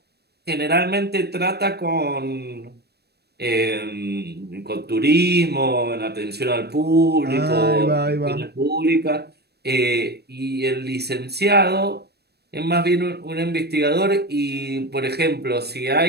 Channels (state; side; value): late; left; 0.47 ms